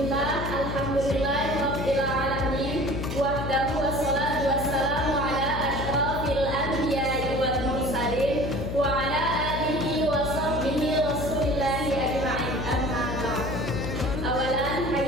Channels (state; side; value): noise; left; hum, 5 dB below the sound